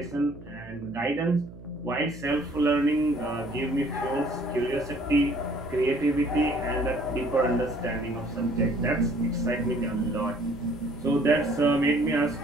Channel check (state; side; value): noise; right; hum, 18 dB below the sound